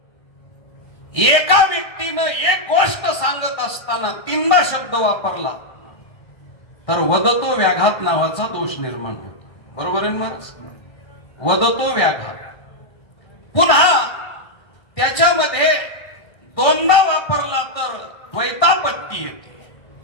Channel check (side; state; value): right; late; 1.6 ms